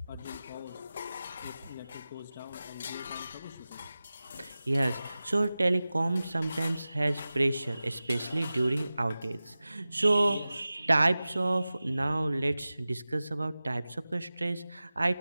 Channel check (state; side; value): inverted; both; correlation -0.96